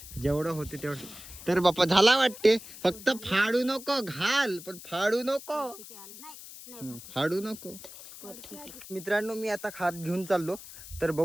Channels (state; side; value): noise; left; hiss, 15 dB below the sound